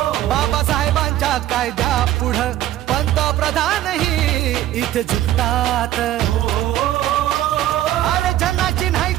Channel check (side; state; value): left; quieter; 13.6 dB